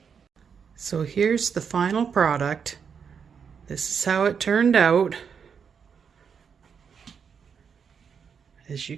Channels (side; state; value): left; quieter; 6.6 dB